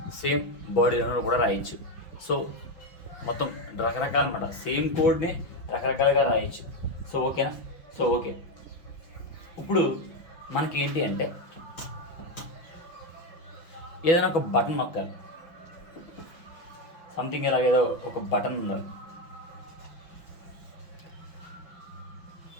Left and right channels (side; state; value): right; late; 5.8 ms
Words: సేమ్ బాడీలోనూ కూడా రాయొచ్చు. సో మొత్తం రకరకాల అన్నమాట. సేమ్ కోడ్ని రకరకాలుగా రాయొచ్చు. సో ఓకేనా? సో ఓకే, ఇప్పుడు మనకి ఏంటి అంటే ఏదైనా ఒక బటన్ నొక్కాలి. సంథింగ్ ఇలాగేదో ఒక బటన్ ఉండాలి.